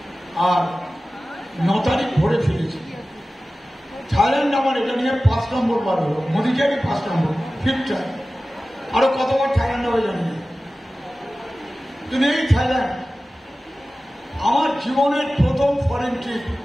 আর 9 তারিখ ভোরে ফিরেছি। থাইল্যান্ড আমার এটা নিয়ে 5 নম্বর বার হলো, মোদিকেরই 5 নম্বর, 5th টাইম। আরো কতবার থাইল্যান্ড হবে জানি না, কিন্তু এই থাইল্যান্ড আমার জীবনের প্রথম ফরেন ট্রিপ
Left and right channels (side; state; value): both; normal; correlation 0.96